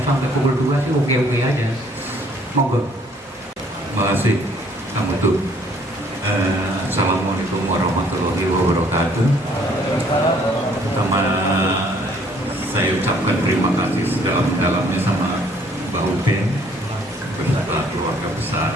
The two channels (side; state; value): both; normal; correlation 0.61